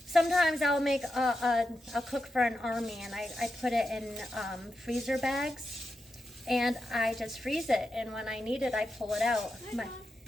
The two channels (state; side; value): normal; both; correlation 0.88